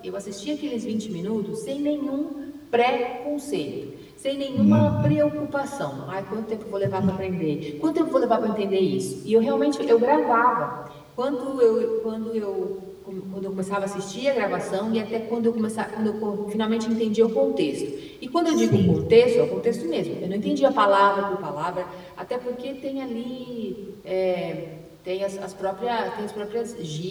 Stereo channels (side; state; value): both; identical; correlation 1.00